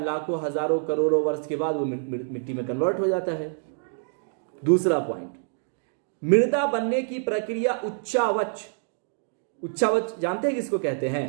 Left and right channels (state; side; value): silent; left; 61 dB below the other